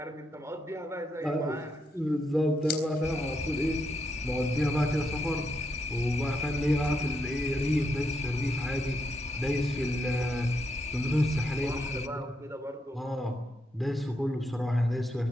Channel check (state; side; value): normal; both; correlation 0.80